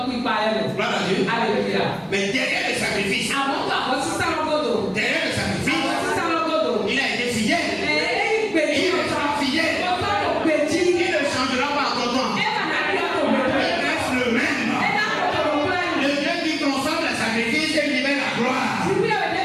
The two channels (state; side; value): identical; both; correlation 1.00